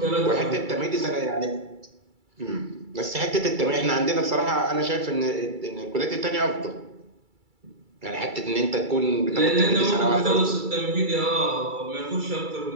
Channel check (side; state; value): left; late; 2.3 ms